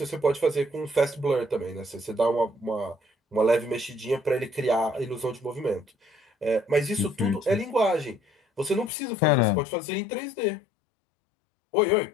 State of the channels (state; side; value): drops out; right; at 8.9 s